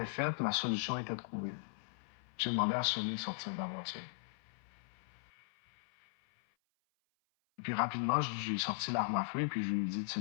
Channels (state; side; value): silent; right; 52 dB below the other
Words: faite, la solution était trouvée. J'ai demandé à Sonny de sortir de la voiture. Et puis rapidement, j'ai sorti l'arme à feu et puis je lui ai dit de se